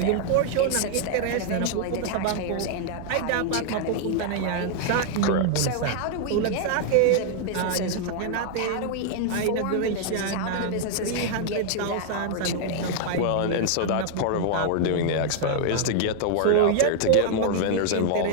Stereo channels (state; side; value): different; both; correlation 0.00